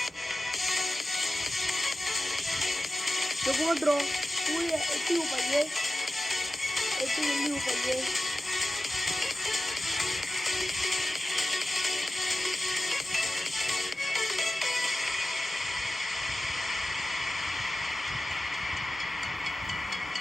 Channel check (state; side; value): normal; both; correlation 0.95